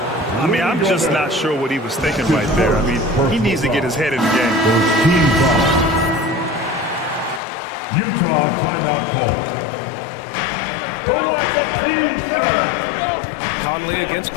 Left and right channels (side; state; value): right; drops out; at 7.4 s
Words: I mean, I'm just not sure what he was thinking right there. I mean, he needs to get his head in the game. Team foul. Utah timeout call. Who wants a team, sir? Conley against